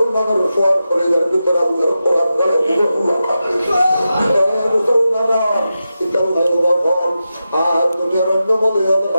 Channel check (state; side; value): inverted; both; correlation -0.91